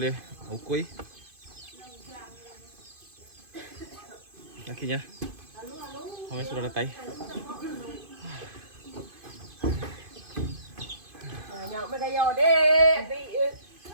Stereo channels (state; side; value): late; left; 2.5 ms